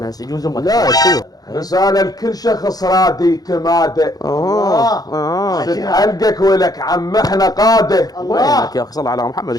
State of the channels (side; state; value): right; late; 0.19 ms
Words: هسه يجوز امك. لا شو رسالة لكل شخص رادي تماده تتعلقك ولك عم احنا قاده. وينك يا اخي صل على محمد